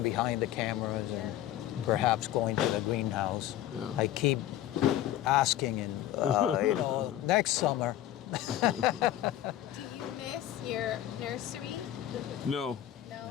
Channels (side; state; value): right; quieter; 12.9 dB